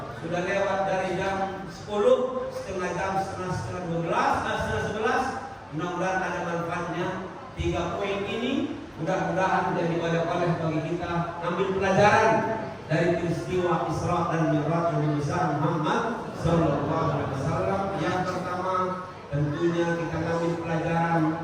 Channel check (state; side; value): identical; both; correlation 1.00